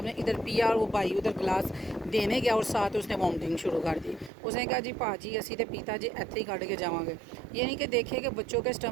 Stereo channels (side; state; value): left; drops out; at 4.3 s